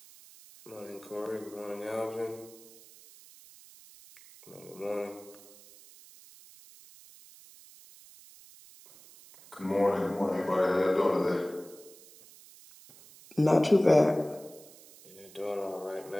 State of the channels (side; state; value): right; noise; hiss, 22 dB below the sound